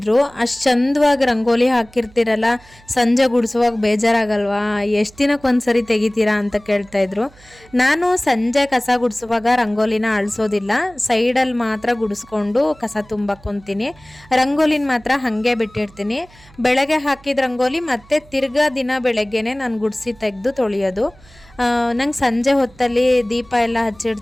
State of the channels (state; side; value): noise; right; hum, 26 dB below the sound